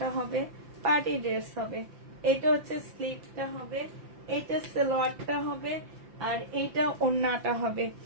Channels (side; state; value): left; late; 5.8 ms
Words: হবে, পার্টি ড্রেস হবে। এটা হচ্ছে স্লিভটা হবে, এটা সালোয়ারটা হবে, আর এইটা ওড়নাটা হবে।